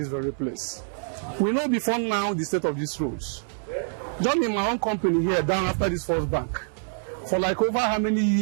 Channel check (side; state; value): left; silent; 61 dB below the other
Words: very place. We know before now the state of these roads. Just in my own company here, down after this First Bank, for like over how many